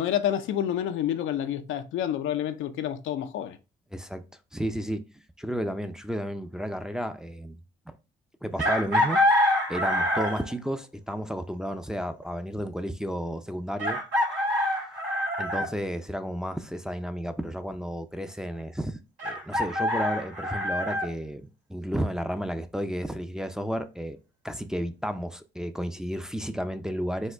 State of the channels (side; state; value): both; normal; correlation 0.60